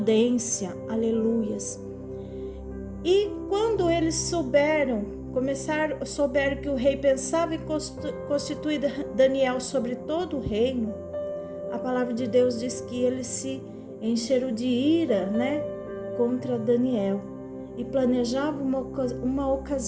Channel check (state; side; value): identical; both; correlation 1.00